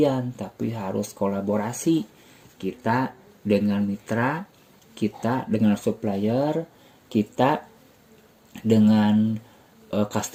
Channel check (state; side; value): identical; both; correlation 1.00